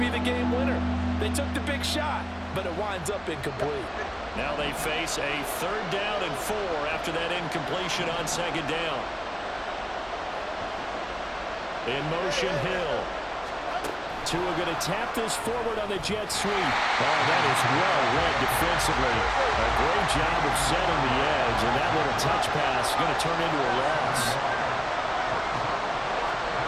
the game winner. They took the big shot, but it winds up incomplete. Now they face a 3rd down and 4 after that incompletion on 2nd down. In motion, Hill. Tua going to tap this forward on the jet sweep. Oh, that is well read defensively. A great job of setting the edge, and that little touch pass is going to turn into a loss.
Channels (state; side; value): identical; both; correlation 1.00